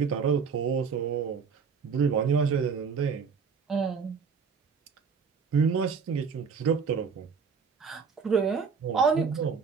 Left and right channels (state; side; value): quieter; left; 5.8 dB